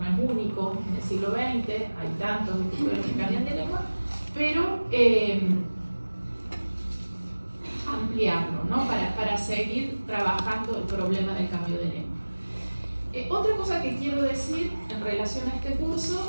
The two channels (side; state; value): both; inverted; correlation -1.00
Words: es único en el siglo XX, hay tantos escritores que cambian de lengua, pero ampliarlo, ¿no? Para seguir trabajando el problema del cambio de lengua. Otra cosa que quiero decir en relación a este